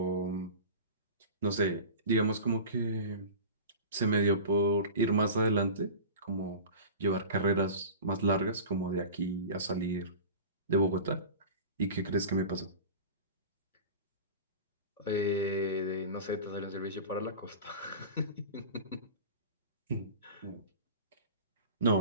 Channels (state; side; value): inverted; both; correlation -0.34